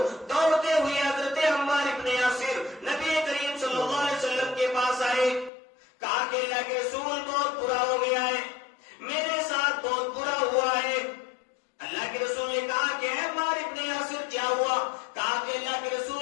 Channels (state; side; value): drops out; right; at 5.5 s